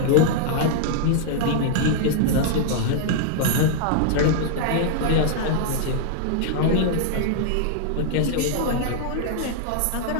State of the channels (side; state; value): both; different; correlation -0.01